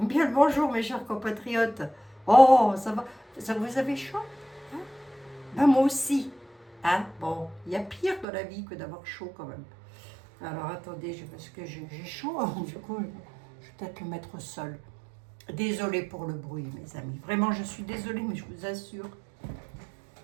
le bonjour, mes chers compatriotes. Oh, ça va. Ça, vous avez chaud, hein? Ben, moi aussi. Hein? Bon, il y a pire dans la vie que d'avoir chaud quand même. Alors attendez, parce que j'ai chaud, du coup, je vais peut-être le mettre au sol. Désolée pour le bruit, mes amis. Vraiment, je suis désolée, mais je vous assure,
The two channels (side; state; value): left; drops out; at 8.2 s